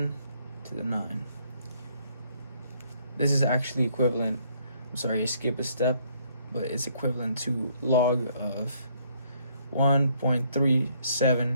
to the 9. This is actually equivalent, I'm sorry, I skipped a step, but it's equivalent to log of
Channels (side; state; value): both; inverted; correlation -0.67